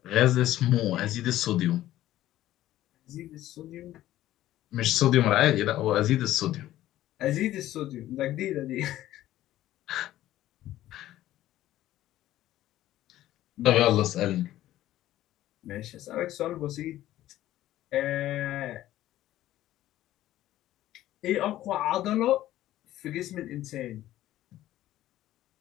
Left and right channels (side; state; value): right; quieter; 14.1 dB